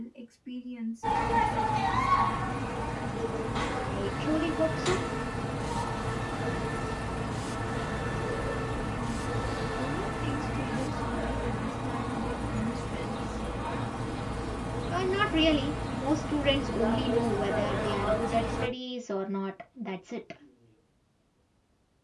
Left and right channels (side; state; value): both; identical; correlation 1.00